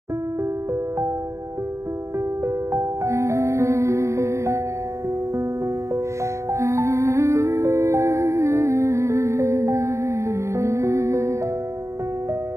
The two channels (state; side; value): late; left; 0.14 ms